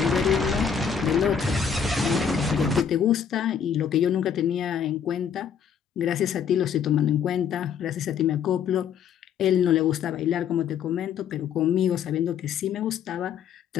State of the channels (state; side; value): quieter; right; 7.5 dB